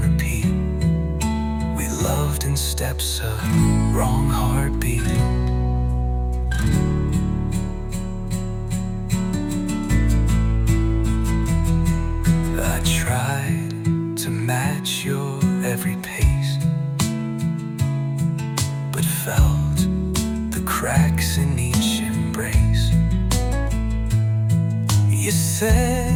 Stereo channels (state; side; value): identical; both; correlation 1.00